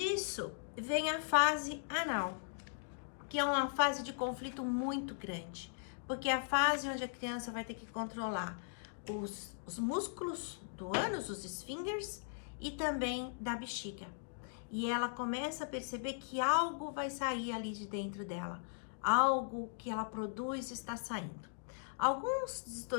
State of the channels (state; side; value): silent; right; digital silence